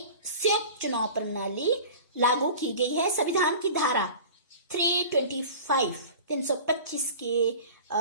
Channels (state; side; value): inverted; both; correlation -0.39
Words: संयुक्त चुनाव प्रणाली लागू की गई है। संविधान की धारा 325 के